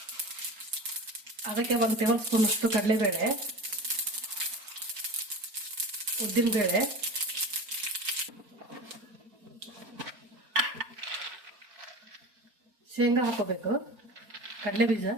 ಅದಕ್ಕೆ 1 ಟೇಬಲ್ ಸ್ಪೂನ್ ಅಷ್ಟು ಕಡಲೆಬೇಳೆ, ಉದ್ದಿನಬೇಳೆ, ಶೇಂಗಾ ಹಾಕೋಬೇಕು, ಕಡಲೆ ಬೀಜ,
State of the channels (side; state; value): left; late; 4.4 ms